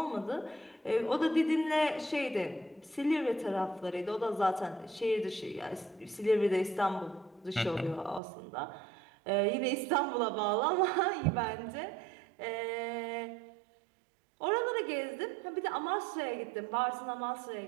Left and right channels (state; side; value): drops out; left; at 8.2 s